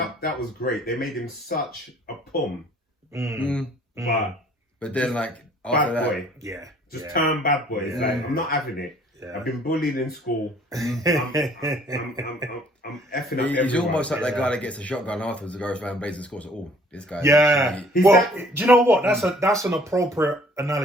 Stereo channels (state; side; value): normal; both; correlation 0.57